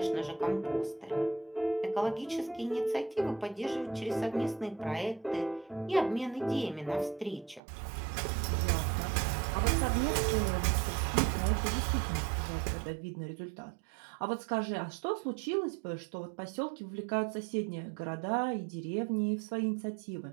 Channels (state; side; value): drops out; left; at 7.6 s